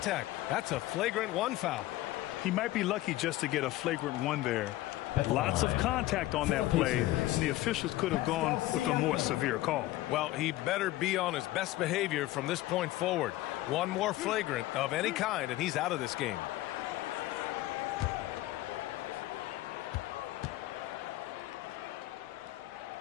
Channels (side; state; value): right; quieter; 16.5 dB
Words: That's a flagrant 1 foul. He might be lucky just to get a flagrant 1 there. Lots of contact on that play, and the officials could have gone with a more severe call. Well, he better be on his best behavior from this point forward. One more flagrant of any kind, and he's out of this game.